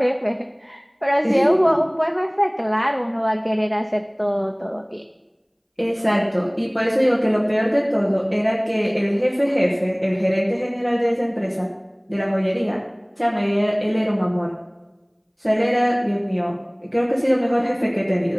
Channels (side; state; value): both; identical; correlation 1.00